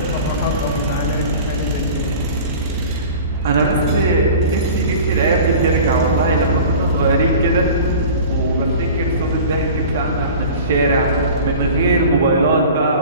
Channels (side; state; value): both; inverted; correlation -0.40